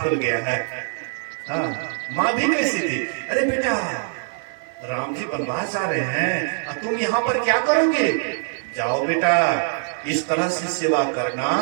गया है। हाँ, माँ भी कैसी थी, अरे बेटा राम जी वनवास जा रहे हैं, तुम यहाँ पर क्या करोगे? जाओ बेटा, इस तरह से सेवा करना,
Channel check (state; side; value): silent; left; 60 dB below the other